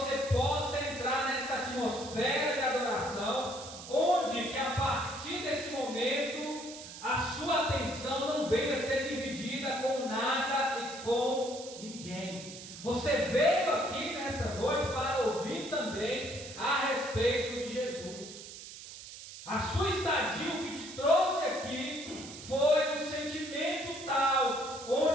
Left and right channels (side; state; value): right; noise; hiss, 13 dB below the sound